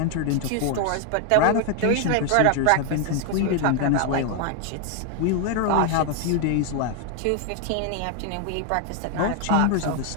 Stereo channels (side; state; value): both; different; correlation 0.00